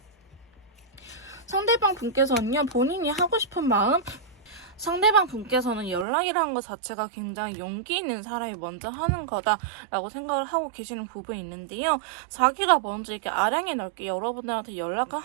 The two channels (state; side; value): drops out; left; at 6.1 s